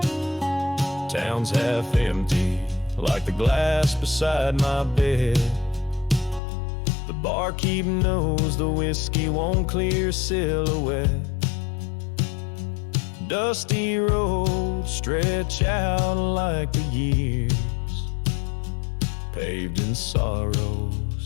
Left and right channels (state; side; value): drops out; right; at 6.4 s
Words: Town's half empty, like the glass beside my bed. The barkeep knows the whiskey won't clear silhouette. Dusty roads stretch out like the years, paved in